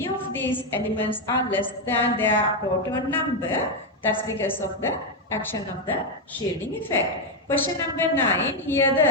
of these elements are less than their proton number. That's because of the action of the shielding effect. Question number 9, here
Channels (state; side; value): normal; both; correlation 0.04